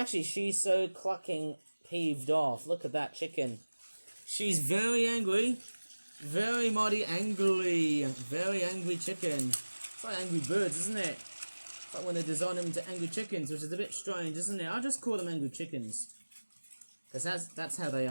clucking peeved off. Look at that chicken. She's very angry. Very mighty angry. Very angry chicken. It's like Angry Birds, isn't it? It's like when they design them into angry chickens, which is a bit strange, isn't it? I'll just call them angry chickens. Because that's how they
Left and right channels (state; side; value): inverted; both; correlation -1.00